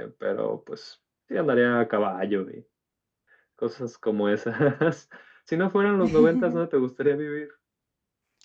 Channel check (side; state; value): both; identical; correlation 1.00